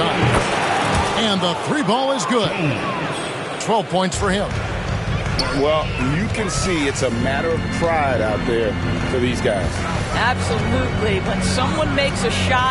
And the 3 ball is good. 12 points for him. Well, you can see it's a matter of pride out there for these guys. Absolutely. When someone makes a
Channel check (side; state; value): both; identical; correlation 1.00